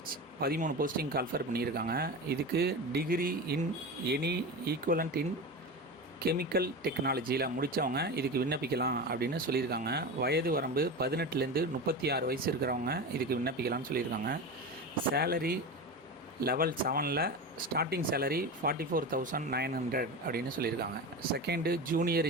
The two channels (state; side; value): normal; both; correlation 0.25